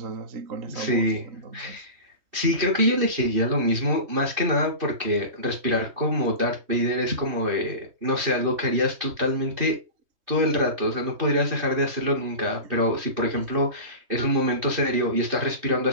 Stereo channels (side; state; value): left; late; 3.2 ms